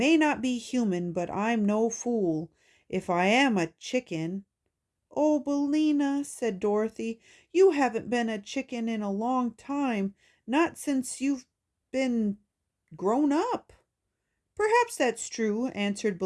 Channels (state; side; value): identical; both; correlation 1.00